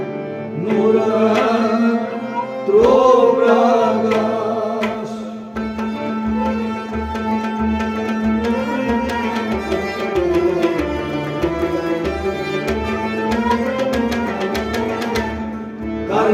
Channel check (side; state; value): both; identical; correlation 1.00